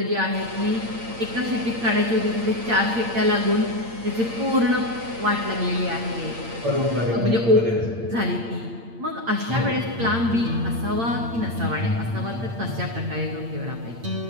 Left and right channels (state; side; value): late; left; 8.7 ms